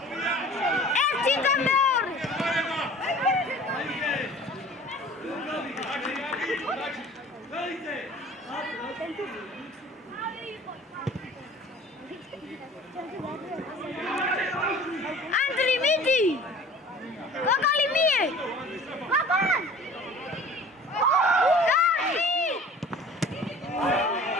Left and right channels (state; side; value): normal; both; correlation 0.45